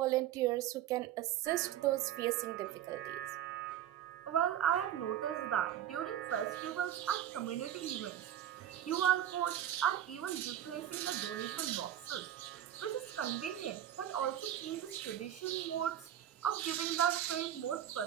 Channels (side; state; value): left; quieter; 11.2 dB